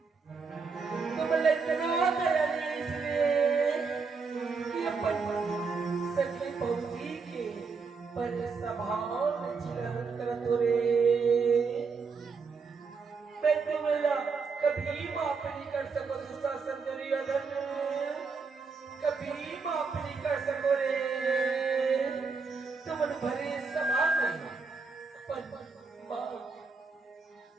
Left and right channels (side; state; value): left; quieter; 4.9 dB